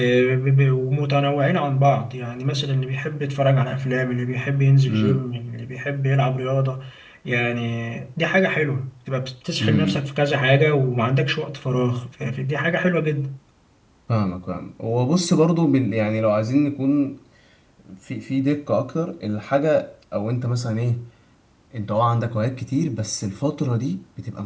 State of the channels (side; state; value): both; identical; correlation 1.00